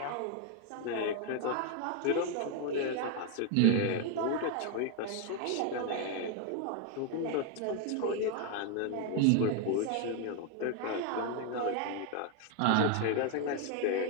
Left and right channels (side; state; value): both; different; correlation 0.01